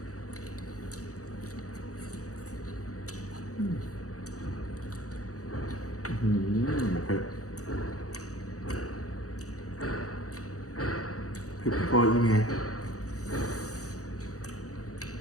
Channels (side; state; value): right; late; 0.66 ms